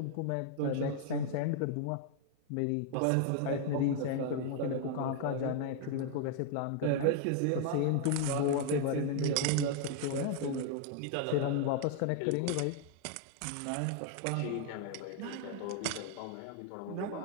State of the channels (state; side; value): different; both; correlation 0.00